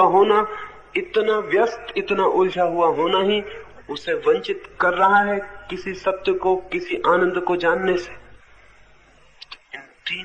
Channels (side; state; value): both; identical; correlation 1.00